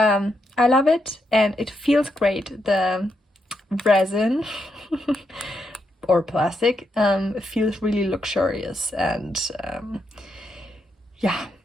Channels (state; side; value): normal; both; correlation 0.81